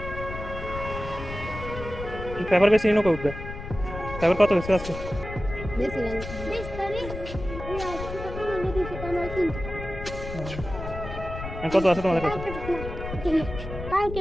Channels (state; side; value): noise; left; rumble, 9 dB below the sound